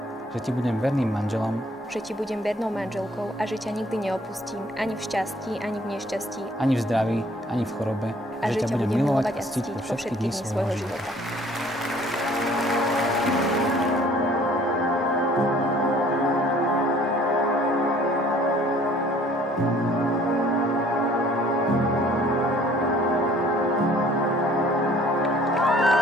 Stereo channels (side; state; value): both; normal; correlation 0.56